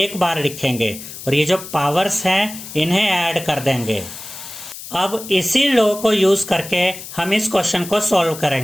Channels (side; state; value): left; noise; hiss, 12 dB below the sound